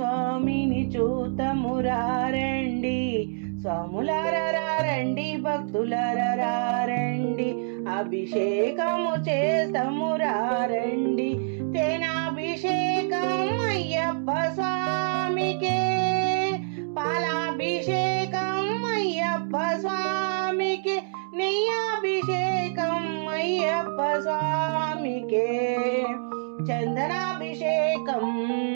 చూతమురారండి. స్వాములారా రండి, భక్తులారా రండి, అభిషేకము చేతమురారండి. తేనాభిషేకం అయ్యప్ప స్వామికే, పాలాభిషేకం అయ్యప్ప స్వామికే, నెయ్యాభిషేకం అయ్యప్ప స్వామికే, చందనాభిషేకం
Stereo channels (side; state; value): left; silent; digital silence